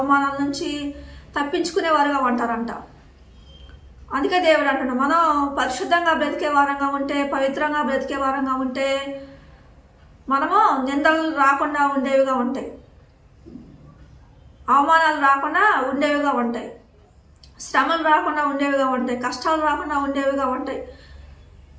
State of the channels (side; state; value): both; identical; correlation 1.00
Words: నుంచి తప్పించుకునేవారుగా ఉంటారంట. అందుకే దేవుడు అంటున్నాడు, మనం పరిశుద్ధంగా బ్రతికే వారంగా ఉంటే, పవిత్రంగా బ్రతికే వారంగా ఉంటే మనము నిందలు రాకుండా ఉండేవిగా ఉంటాయి, అవమానాలు రాకుండా ఉండేవిగా ఉంటాయి, శ్రమలు రాకుండా ఉండేవిగా ఉంటాయి, కష్టాలు రాకుండా ఉండేవిగా ఉంటాయి,